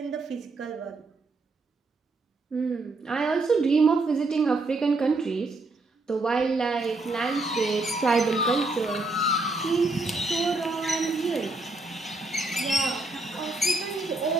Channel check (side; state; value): left; quieter; 3.1 dB